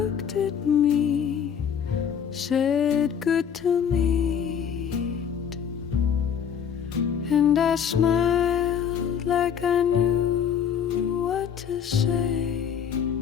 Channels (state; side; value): quieter; right; 7.9 dB